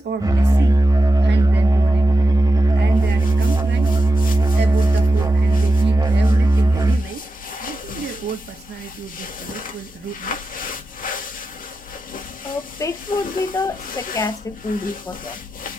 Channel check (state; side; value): normal; both; correlation 0.90